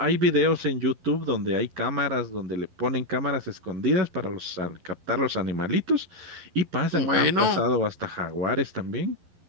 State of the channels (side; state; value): left; late; 11 ms